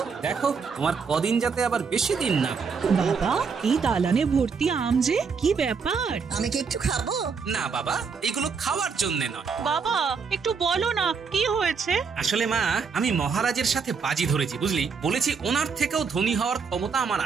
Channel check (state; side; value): quieter; left; 5.5 dB